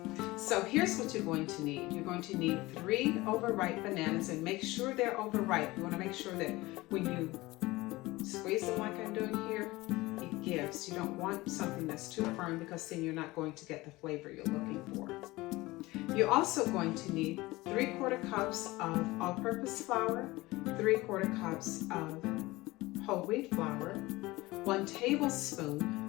So here's what you're going to need. You're going to need 3 overripe bananas, and make sure they're overripe. You want to make sure that when you squeeze them like I'm doing here, it gives. You don't want something that's too firm because then you're not going to get the flavor you're looking for. You're also going to need 3/4 cups of all-purpose flour, 3/4 cups of whole wheat flour, 1 tablespoon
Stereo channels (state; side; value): quieter; right; 20.2 dB